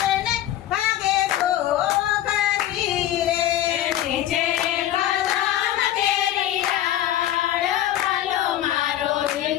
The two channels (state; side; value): quieter; right; 12.6 dB